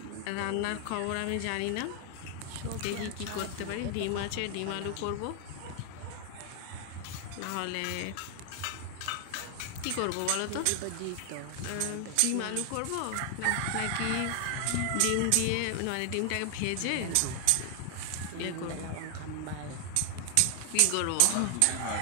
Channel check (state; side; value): different; both; correlation 0.00